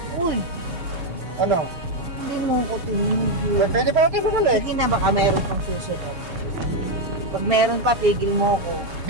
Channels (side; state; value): left; late; 6.9 ms